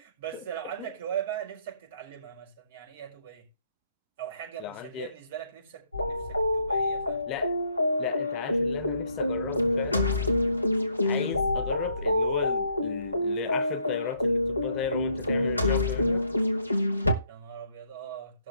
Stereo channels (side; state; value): both; inverted; correlation -0.71